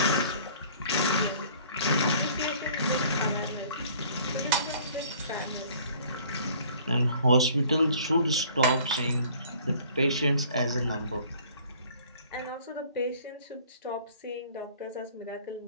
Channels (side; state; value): both; inverted; correlation -0.53